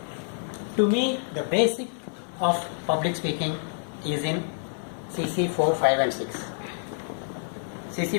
To me, the basic of public speaking is in CC 4, 5 and 6.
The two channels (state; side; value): silent; right; 60 dB below the other